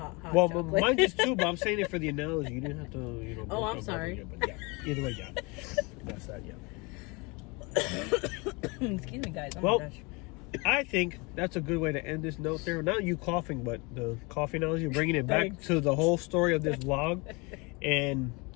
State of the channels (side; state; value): right; quieter; 27.8 dB